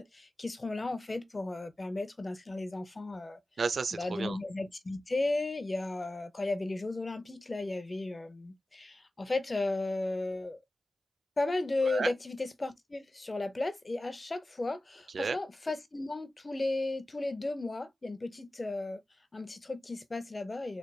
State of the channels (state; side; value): normal; both; correlation 0.95